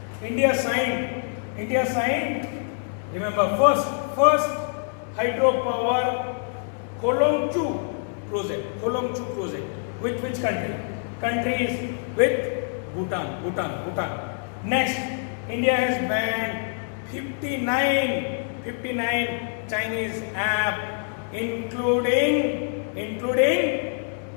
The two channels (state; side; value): silent; right; 61 dB below the other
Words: India signed. Remember, first hydropower Kolongchu project. Which country? Country is with Bhutan. Next, India has banned 59 Chinese app, including